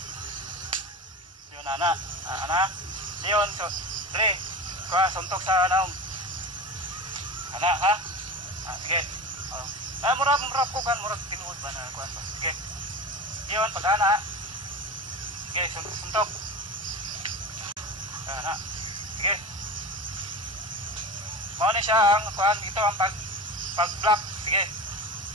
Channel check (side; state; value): both; normal; correlation 0.28